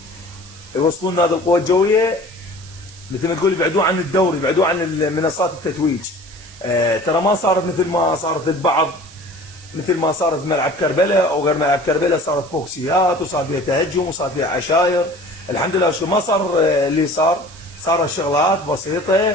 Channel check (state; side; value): noise; right; hiss, 21 dB below the sound